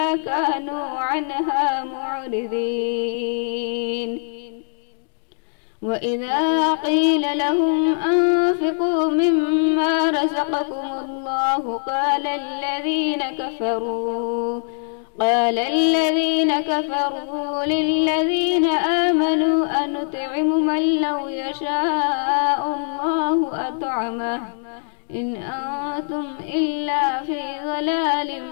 كانوا عنها معرضين وإذا قيل لهم أنفقوا مما رزقكم الله قال الذين كفروا للذين آمنوا أنطعم من لو يشاء الله أطعمه إن أنتم إلا في ضلال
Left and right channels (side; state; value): right; silent; digital silence